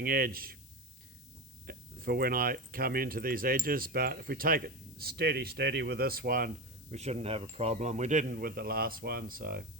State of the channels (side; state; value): left; noise; hiss, 22 dB below the sound